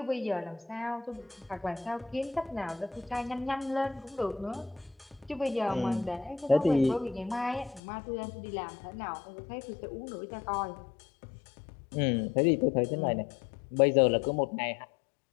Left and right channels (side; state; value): right; drops out; at 7.8 s